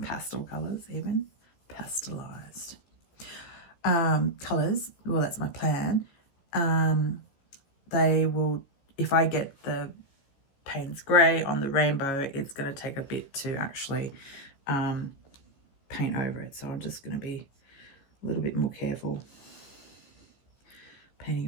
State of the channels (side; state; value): right; late; 15 ms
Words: pastel colors, even pastelized colors. Well, that's my plan. They will, if I get the Payne's grey on the rainbow, it's going to take a bit to actually paint over it. So I'm just going to be a little bit more careful